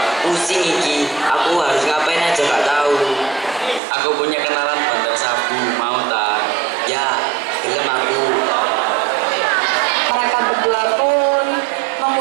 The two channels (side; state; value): left; drops out; at 3.8 s